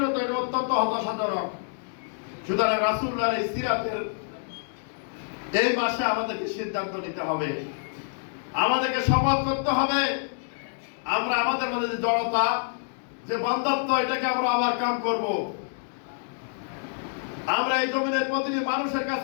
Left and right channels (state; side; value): silent; right; digital silence